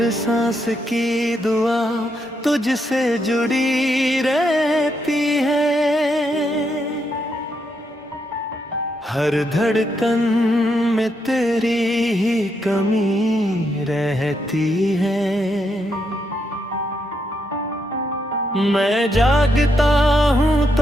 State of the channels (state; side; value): normal; both; correlation 0.79